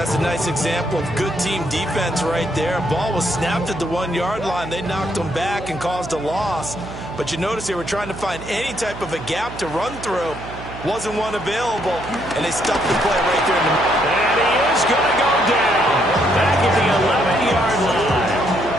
a nice example of good team defense right there. Ball was snapped at the 1-yard line. They knocked them back and caused a loss. But you notice they were trying to find any type of a gap to run through. Wasn't one available, and they stuffed the play right there in the middle. And he is going to go down. Back at the 11-yard line.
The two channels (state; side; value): noise; right; hum, 12 dB below the sound